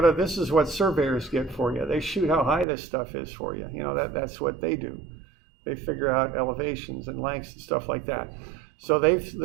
this is what surveyors get for you. They shoot how high this stuff is for you. You know, that's what they do. They figure out elevations and lengths and stuff like that. So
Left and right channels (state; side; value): drops out; left; at 2.7 s